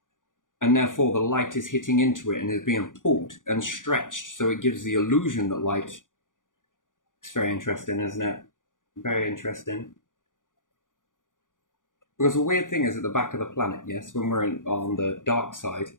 And therefore, the light is hitting into it and is being pulled and stretched. So it gives the illusion that light... It's very interesting, isn't it? Very interesting. Because the weird thing is at the back of the planet, yes, when we're on the dark side,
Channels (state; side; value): late; right; 0.88 ms